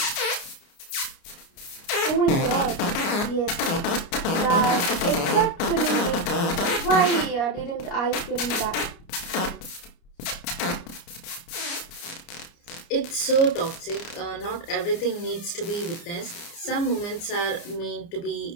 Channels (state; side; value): late; right; 29 ms